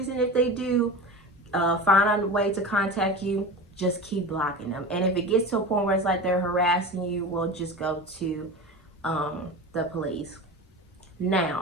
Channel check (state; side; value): normal; both; correlation 0.30